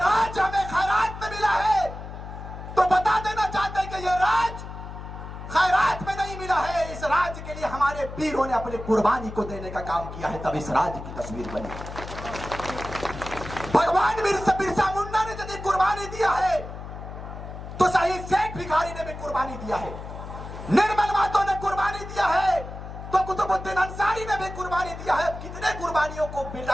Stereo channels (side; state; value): left; noise; hum, 10 dB below the sound